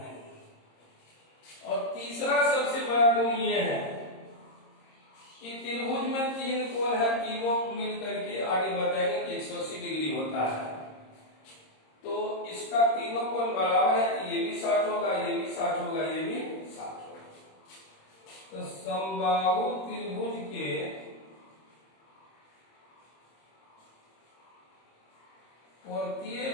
और तीसरा सबसे बड़ा गुण ये है कि त्रिभुज में 3 कोण है, तीनों मिल करके आगे बताएंगे कि 180 डिग्री होता है। तो इसका तीनों कोण बराबर है, तो ये भी 60 होगा, ये भी 60 होगा, ये भी 60 होगा। तो समबाहु त्रिभुज के प्रत्येक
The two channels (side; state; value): right; late; 26 ms